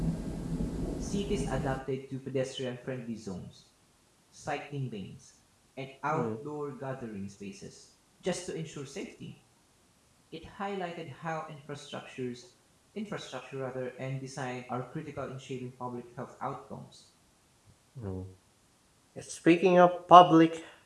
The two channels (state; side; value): identical; both; correlation 1.00